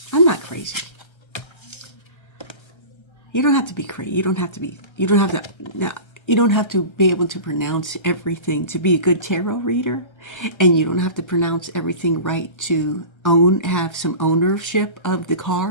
I'm not crazy. You don't have to be crazy. You don't have to be. You don't have to. No, you don't have to be able to pronounce everything to be a good tarot reader, and you don't have to pronounce everything right to have some ownership of the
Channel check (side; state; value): right; late; 1.3 ms